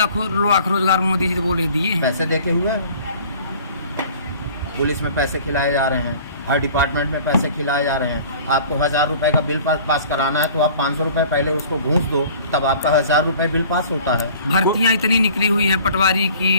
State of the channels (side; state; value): both; inverted; correlation -0.48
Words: रोजगार मोदी जी ने बोले दिए हैं। पैसे देके हुए, पुलिस में पैसे खिलाए जा रहे हैं, हर डिपार्टमेंट में पैसे खिलाए जा रहे हैं। आपको 1000 रुपये का बिल पास कराना है तो आप 500 रुपये पहले उसको घूस दो, तब आपका 1000 रुपये बिल पास होता है। भर्तियाँ इतनी निकली हुई हैं, पटवारी